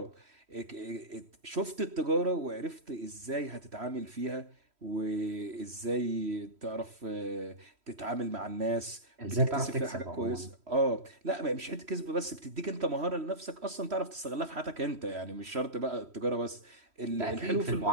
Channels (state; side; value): late; left; 3.1 ms